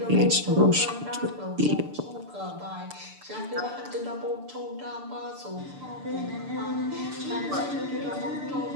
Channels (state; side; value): late; left; 6.8 ms